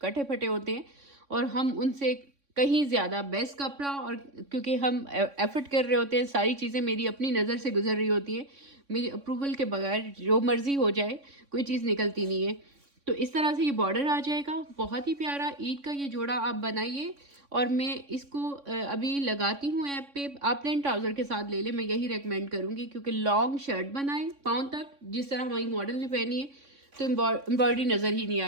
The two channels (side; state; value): left; late; 3.6 ms